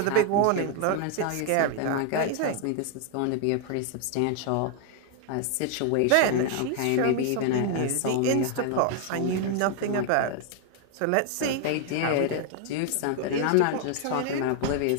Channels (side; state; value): both; different; correlation 0.00